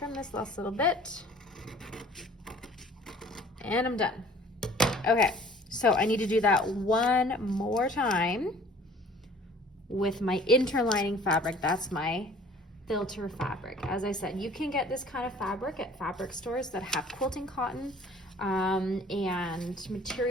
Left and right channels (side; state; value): both; normal; correlation 0.51